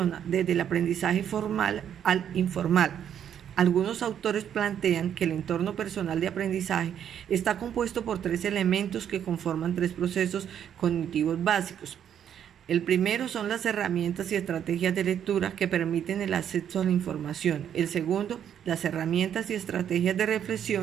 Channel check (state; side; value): quieter; left; 9.3 dB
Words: desde el aprendizaje formal al informal. Algunos autores plantean que el entorno personal de aprendizaje está compuesto por 3 elementos que conforman 3 procesos cognitivos básicos. El primero son las herramientas y estrategias de lectura que permiten el acceso a la información. El segundo, las herramientas y estrategias de